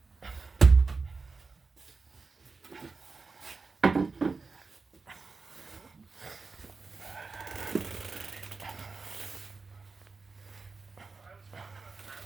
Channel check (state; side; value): quieter; left; 4.2 dB